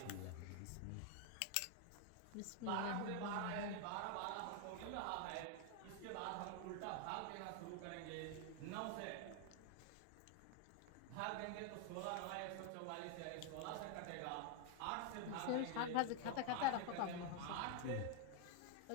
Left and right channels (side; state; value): both; different; correlation 0.01